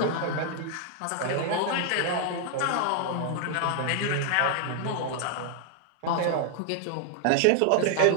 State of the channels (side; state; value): both; different; correlation 0.00